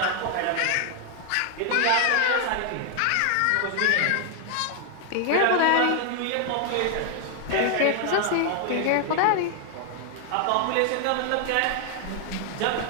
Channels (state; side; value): different; both; correlation 0.00